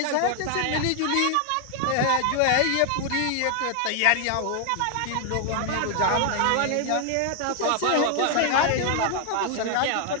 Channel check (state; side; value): different; both; correlation 0.00